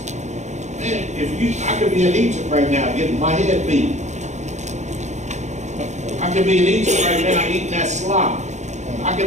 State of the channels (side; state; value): left; late; 0.34 ms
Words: "Man, I could be in Egypt right now getting my head beat. I could be in Egypt right now eating that slop. I